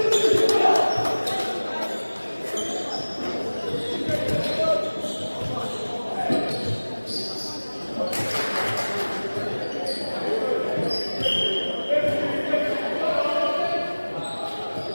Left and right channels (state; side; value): inverted; both; correlation -1.00